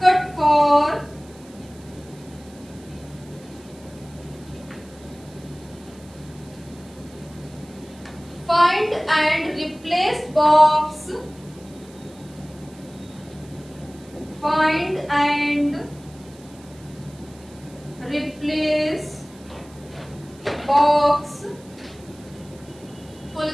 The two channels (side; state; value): right; noise; hiss, 25 dB below the sound